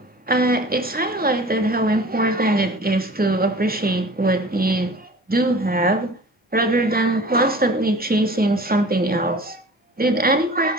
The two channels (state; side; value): normal; both; correlation 0.43